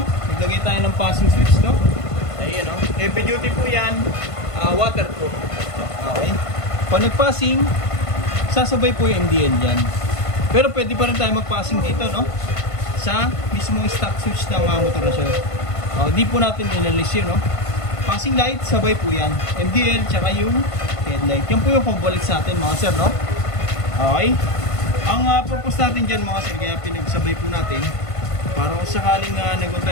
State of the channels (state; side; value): late; right; 1.5 ms